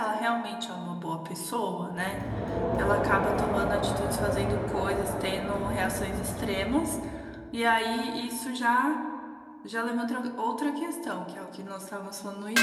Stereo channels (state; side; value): identical; both; correlation 1.00